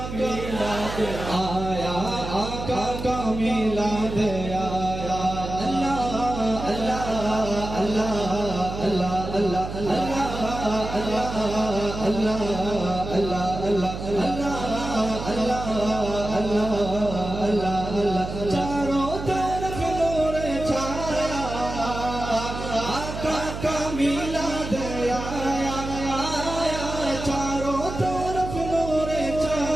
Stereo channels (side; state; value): right; noise; hum, 7 dB below the sound